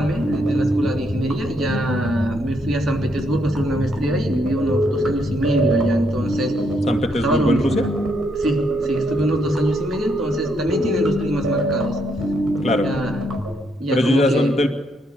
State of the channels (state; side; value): normal; both; correlation 0.75